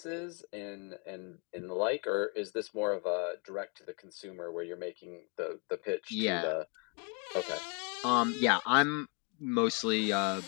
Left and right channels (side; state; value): right; quieter; 35.2 dB